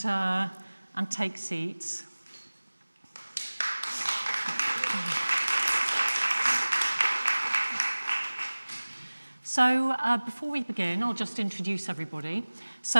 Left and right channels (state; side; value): inverted; both; correlation -1.00